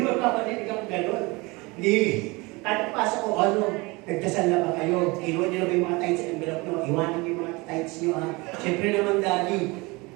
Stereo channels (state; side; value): quieter; left; 24.8 dB